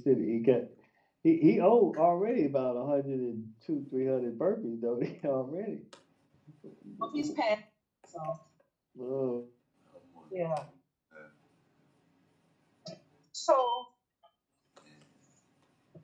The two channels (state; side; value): identical; both; correlation 1.00